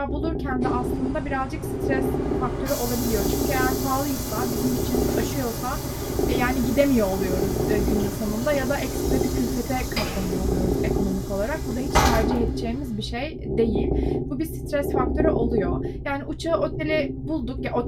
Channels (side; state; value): both; identical; correlation 1.00